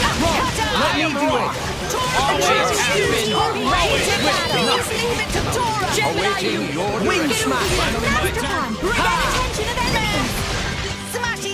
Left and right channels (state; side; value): identical; both; correlation 1.00